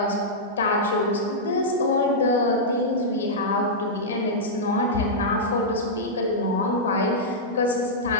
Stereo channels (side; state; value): both; normal; correlation -0.10